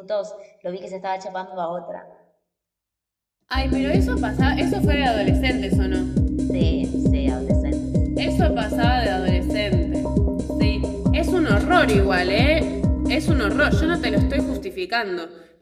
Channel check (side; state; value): both; identical; correlation 1.00